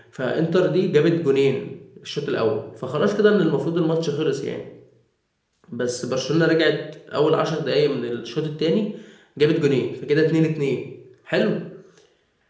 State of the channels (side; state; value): both; identical; correlation 1.00